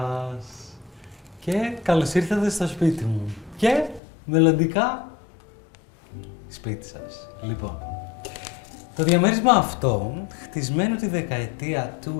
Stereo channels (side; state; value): right; drops out; at 4.0 s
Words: Και καλώς ήρθατε στο σπίτι μου. Και μελλοντικά σπίτι σας. Λοιπόν, το διαμέρισμα αυτό, χτισμένο τη δεκαετία